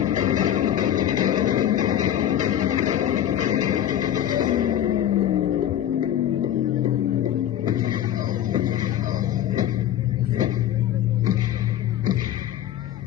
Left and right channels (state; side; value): quieter; right; 11.2 dB